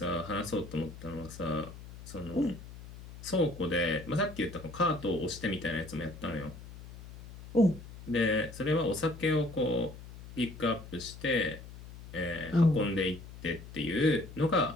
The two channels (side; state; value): left; noise; hum, 15 dB below the sound